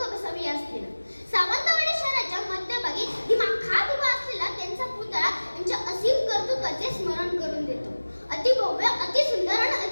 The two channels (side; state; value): both; inverted; correlation -1.00